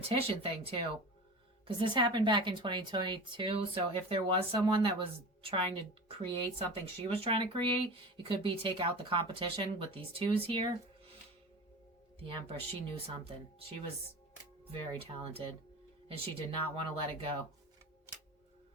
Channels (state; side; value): normal; both; correlation 0.33